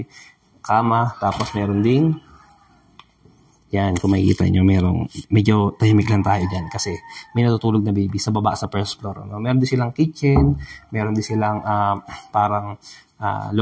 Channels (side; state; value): both; identical; correlation 1.00